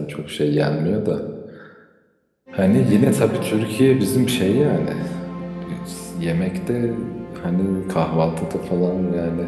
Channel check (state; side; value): identical; both; correlation 1.00